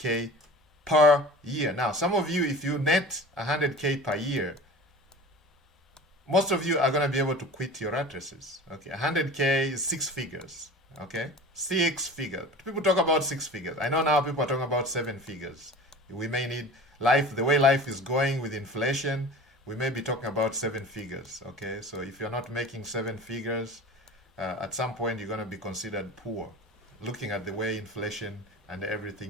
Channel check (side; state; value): both; normal; correlation 0.38